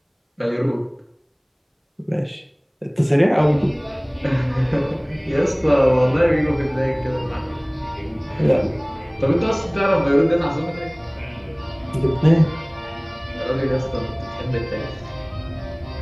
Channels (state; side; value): identical; both; correlation 1.00